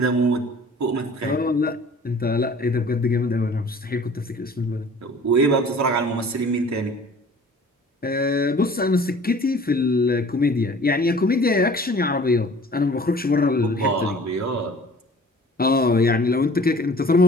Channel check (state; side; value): normal; both; correlation 0.48